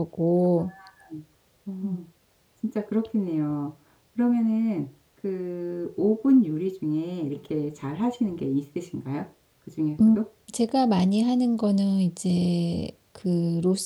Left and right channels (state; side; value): identical; both; correlation 1.00